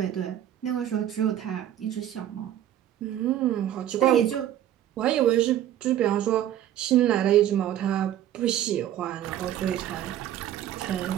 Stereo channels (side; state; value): left; quieter; 11.6 dB